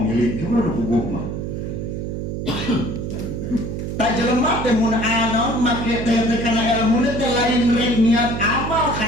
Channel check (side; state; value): right; noise; hum, 4 dB below the sound